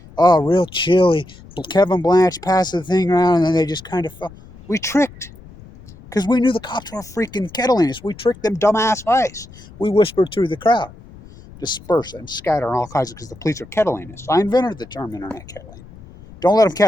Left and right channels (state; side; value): noise; left; rumble, 20 dB below the sound